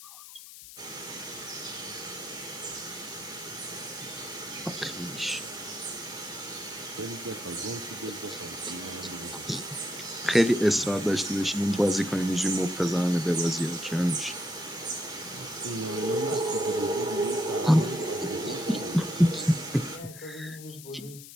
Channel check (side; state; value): left; noise; hiss, 15 dB below the sound